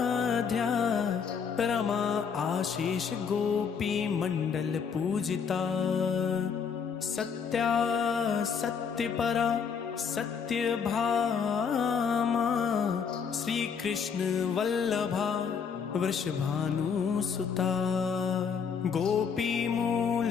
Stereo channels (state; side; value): quieter; right; 6.4 dB